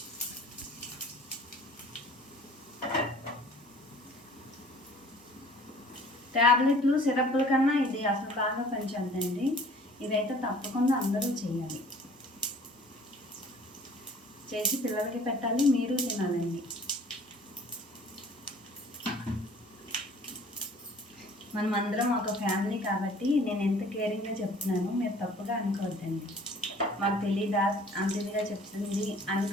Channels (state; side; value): normal; both; correlation 0.51